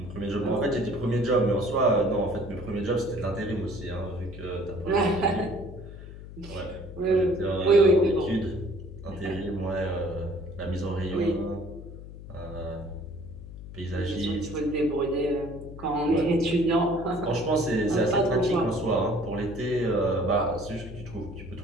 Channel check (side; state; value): left; noise; hum, 13 dB below the sound